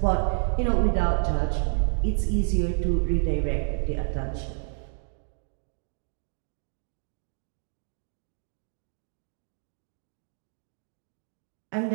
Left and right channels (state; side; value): silent; left; 58 dB below the other